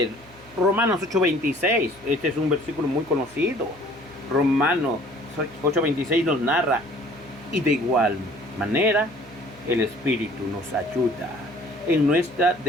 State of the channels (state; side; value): normal; both; correlation 0.53